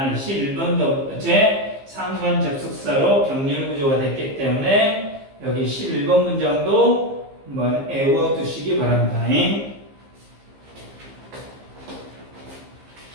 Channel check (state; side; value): late; left; 15 ms